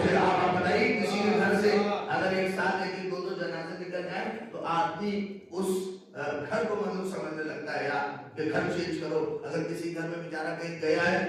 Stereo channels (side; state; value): both; identical; correlation 1.00